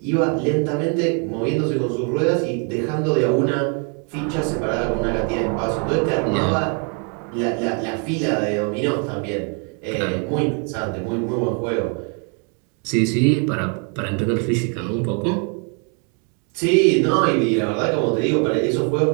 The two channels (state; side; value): quieter; left; 38.7 dB